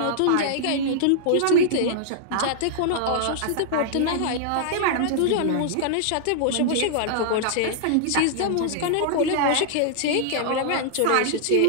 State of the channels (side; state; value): both; different; correlation -0.01